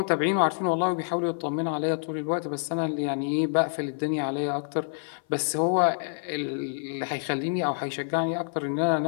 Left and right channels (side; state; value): right; silent; 56 dB below the other